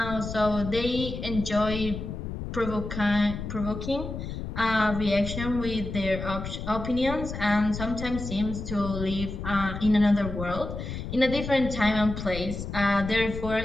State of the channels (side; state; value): left; noise; rumble, 7 dB below the sound